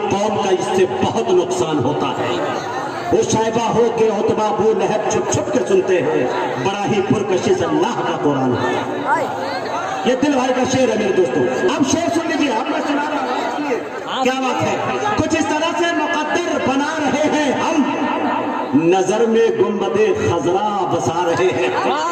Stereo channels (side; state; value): both; identical; correlation 1.00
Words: कौम का इससे बहुत नुकसान होता है। वो शायबा हो के उतबा वो लहब छुप छुप के सुनते हैं, बड़ा ही पुरकशिश अल्लाह का कुरान है। ये दिल भाई का शेर है मेरे दोस्तों। अब शेर सुन लीजिए, अब मैं सुना रहा हूं, क्या बात है। कुछ इस तरह से मुकद्दर बना रहे हैं हम, नजर में गुंबदे खजरा बसा रहे हैं।